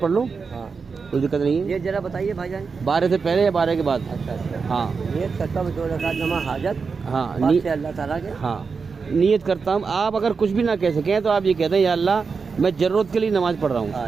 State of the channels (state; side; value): quieter; left; 5.1 dB